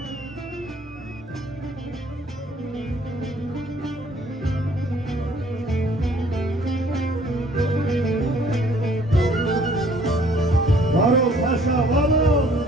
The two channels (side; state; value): both; normal; correlation 0.58